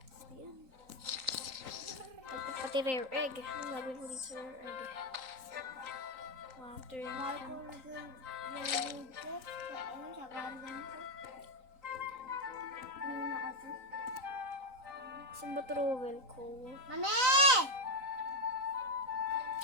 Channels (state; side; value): late; left; 3.9 ms